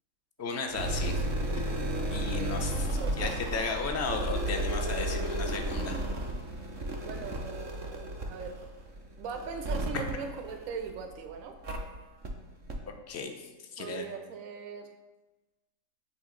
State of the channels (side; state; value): left; late; 3.1 ms